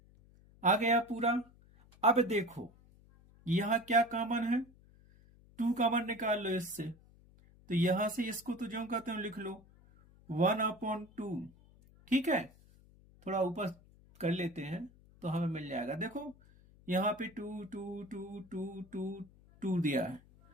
आ गया पूरा। अब देखो यहां क्या कॉमन है, 2 कॉमन निकाल लो इससे, तो यहां से इसको तो जो कहते हो लिख लो 1/2। ठीक है, थोड़ा ऊपर कर लेते हैं तो हमें मिल जाएगा। देखो यहाँ पे 2 2 2 2 2 2 दिया है,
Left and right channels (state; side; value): noise; left; hum, 26 dB below the sound